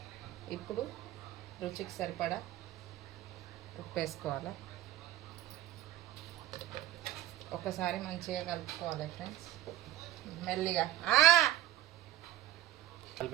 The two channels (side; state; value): left; quieter; 13.5 dB